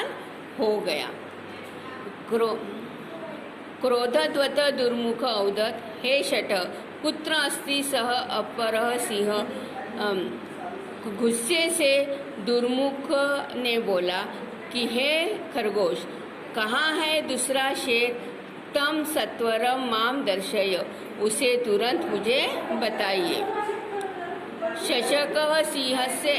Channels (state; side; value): identical; both; correlation 1.00